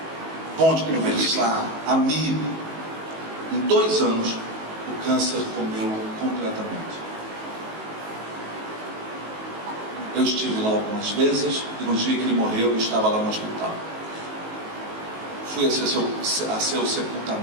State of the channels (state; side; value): late; left; 19 ms